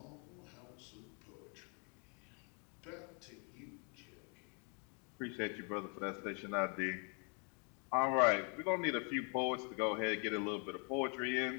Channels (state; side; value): quieter; right; 37.0 dB